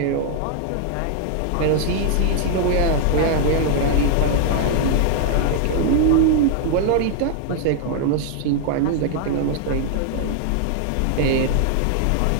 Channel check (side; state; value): both; different; correlation 0.00